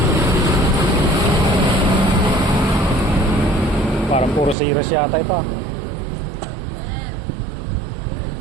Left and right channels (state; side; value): drops out; left; at 4.5 s